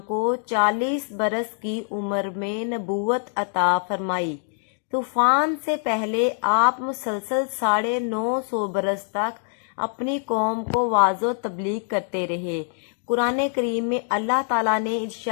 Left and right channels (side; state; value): right; silent; 62 dB below the other